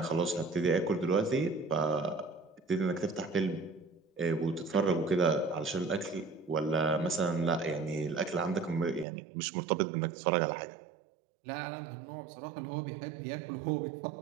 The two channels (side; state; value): left; drops out; at 9.1 s